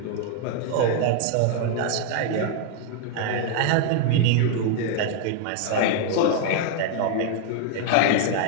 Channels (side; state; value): both; different; correlation 0.00